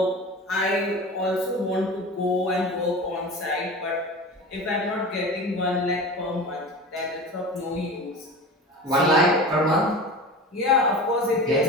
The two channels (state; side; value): normal; both; correlation 0.33